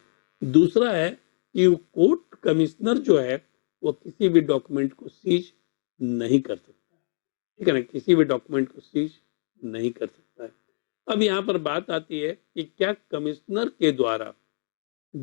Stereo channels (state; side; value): silent; right; digital silence